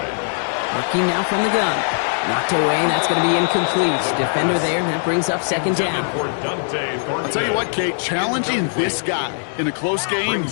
Working now from the gun. Knocked away, and that's going to be incomplete. Defender there, and that brings up second down. I'll tell you what, Kate, challenging this guy in a close game,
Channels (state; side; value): silent; right; digital silence